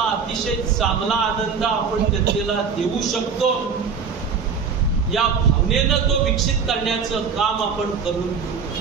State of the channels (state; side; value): quieter; left; 6.0 dB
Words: अतिशय चांगला आनंद आपण जनतेला देऊ शकतो या भावनेनं तो विकसित करण्याचं काम आपण करून घेऊ.